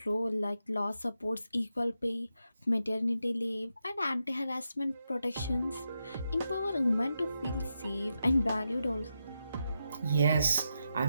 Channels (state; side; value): inverted; both; correlation -0.85